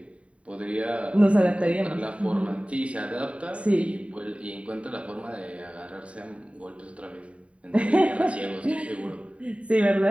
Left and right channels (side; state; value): left; late; 0.063 ms